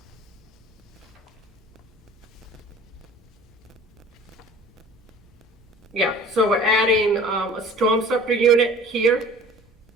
Yeah, so we're adding, a storm scepter unit here,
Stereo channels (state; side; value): normal; both; correlation 0.46